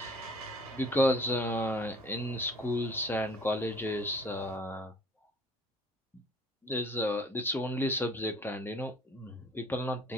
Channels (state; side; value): normal; both; correlation 0.52